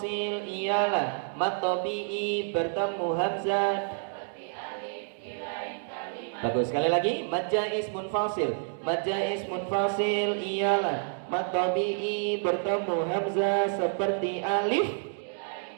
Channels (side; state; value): left; silent; digital silence